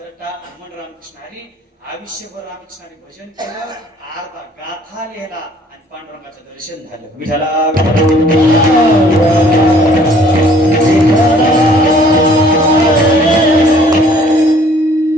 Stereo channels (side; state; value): both; normal; correlation 0.58